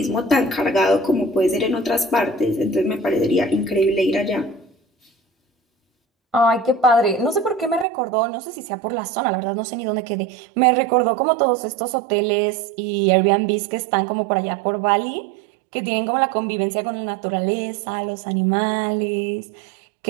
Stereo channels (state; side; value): drops out; left; at 7.9 s